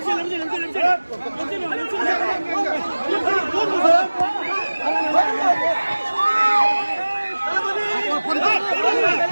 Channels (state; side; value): inverted; both; correlation -1.00